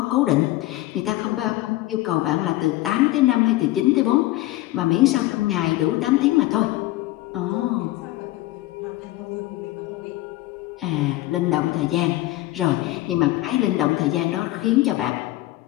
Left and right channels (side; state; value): right; quieter; 17.3 dB